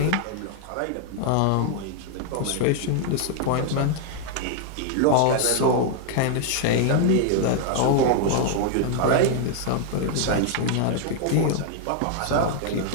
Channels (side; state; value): both; different; correlation 0.00